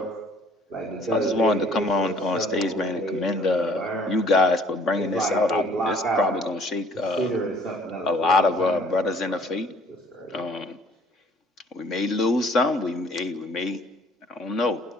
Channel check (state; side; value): normal; both; correlation 0.57